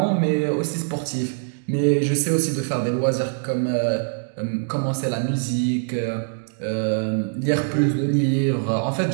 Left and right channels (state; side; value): silent; left; 63 dB below the other